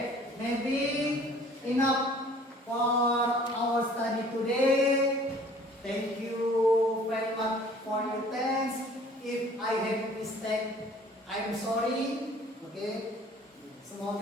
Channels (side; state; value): both; normal; correlation 0.52